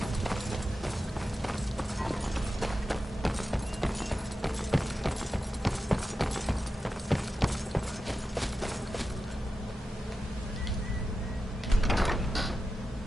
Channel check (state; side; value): normal; both; correlation 0.91